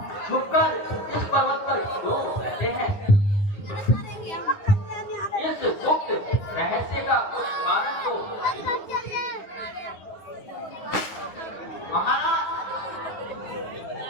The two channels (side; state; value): right; late; 9.7 ms